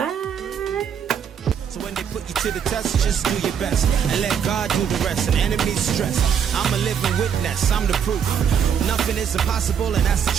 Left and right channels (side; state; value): left; quieter; 7.8 dB